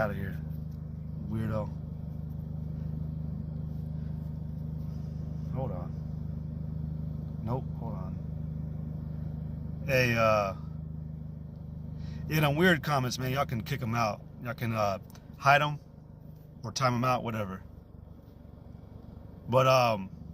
of here, weirdo. Hold on. Nope, hold on. Hey, them weird comments, man, y'all can kick them out. Y'all can hide them or time them out, whatever. But,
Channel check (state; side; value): identical; both; correlation 1.00